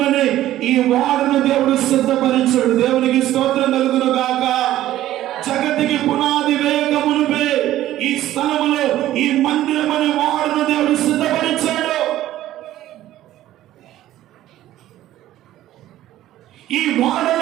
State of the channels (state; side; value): quieter; left; 13.9 dB